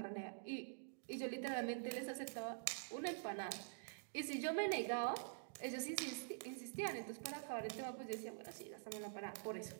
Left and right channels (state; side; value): silent; left; digital silence